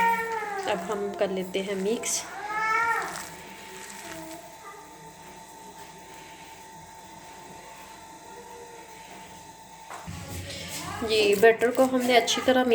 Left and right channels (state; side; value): identical; both; correlation 1.00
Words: अब हम कर लेते हैं मिक्स। जी, बैटर को हमने अच्छी तरह